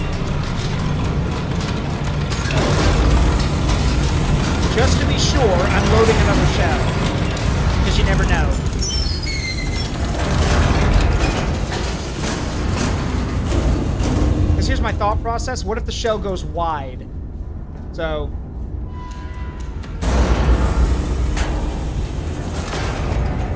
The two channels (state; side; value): identical; both; correlation 1.00